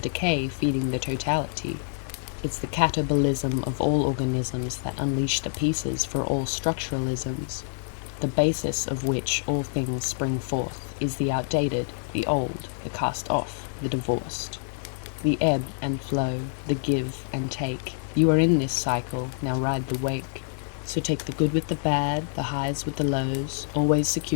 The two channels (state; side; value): silent; right; digital silence